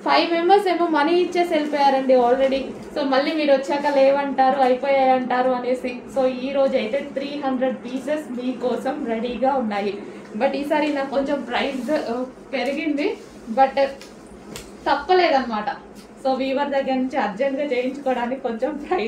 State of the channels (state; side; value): identical; both; correlation 1.00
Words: 5 మెంబర్స్ ఏమో మనీ ఇచ్చేసి వెళ్ళిపోయారండి ఆల్రెడీ. సో మళ్ళీ మీరు వచ్చాక లేవంటారు, అయిపోయాయి అంటారు అనేసి. సో ఈ రోజు అయితే 300 పీసెస్ మీకోసం రెడీగా ఉన్నాయి. బట్ ఈసారి నాకు కొంచెం ప్రైస్ పెరిగింది, బట్ తప్పలేదన్నమాట. సో వీవర్ దగ్గర నుంచి అర్జెంట్గా చేయించుకోవడానికి కొంచెం